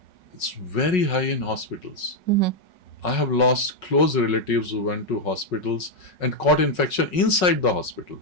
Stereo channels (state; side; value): late; right; 5.4 ms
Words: It's very high in hospitals. I have lost close relatives who went to hospitals and caught infection inside the hospital,